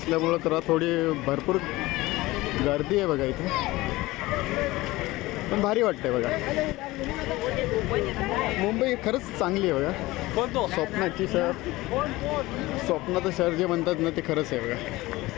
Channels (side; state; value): right; quieter; 19.5 dB